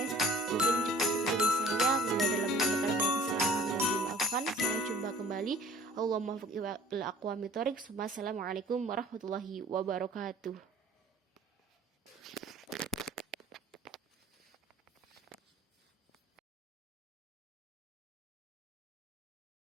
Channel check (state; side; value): normal; both; correlation 0.50